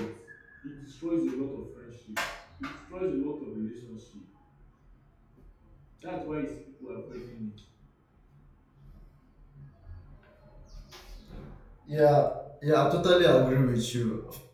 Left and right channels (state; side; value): identical; both; correlation 1.00